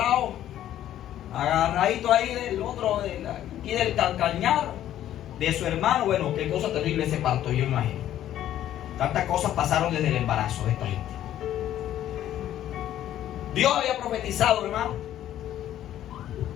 agarradito ahí del otro, aquí del calcañar de su hermano. Bueno, qué cosa terrible ese parto, yo imagino. Tantas cosas pasaron desde el embarazo de esta gente. Dios había profetizado, hermano,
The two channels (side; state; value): right; quieter; 12.0 dB